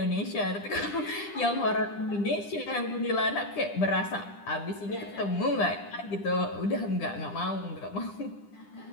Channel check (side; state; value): right; late; 10 ms